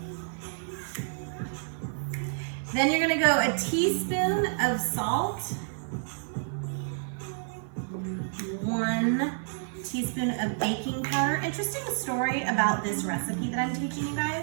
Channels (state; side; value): silent; left; 58 dB below the other